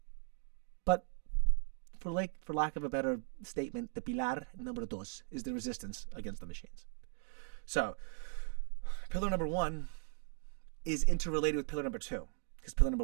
But for lack of a better statement, the pilar number dos is the resistance against the machines. So, pillar number one is interrelated with pillar number two, because pillar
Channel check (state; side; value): silent; left; 52 dB below the other